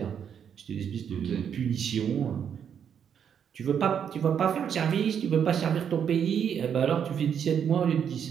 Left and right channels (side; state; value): left; quieter; 8.1 dB